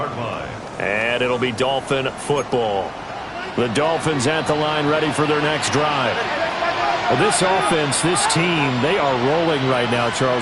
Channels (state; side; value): identical; both; correlation 1.00